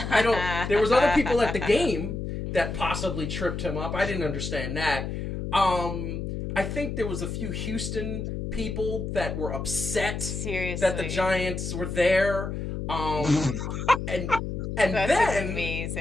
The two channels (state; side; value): noise; left; hum, 4 dB below the sound